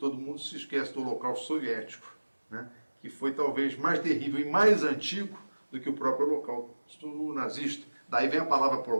mundo se esquece do Holocausto soviético, né? Que foi talvez mais terrível e mais antigo do que o próprio Holocausto nazista. Daí vem a palavra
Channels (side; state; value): both; inverted; correlation -1.00